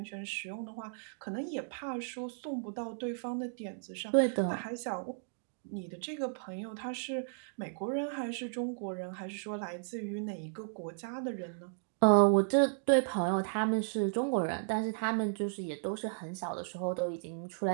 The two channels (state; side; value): silent; left; digital silence